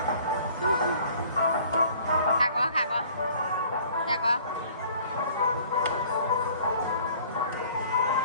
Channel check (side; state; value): both; inverted; correlation -0.53